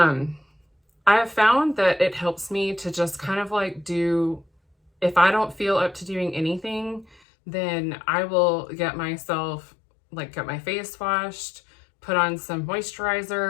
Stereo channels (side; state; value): right; drops out; at 7.2 s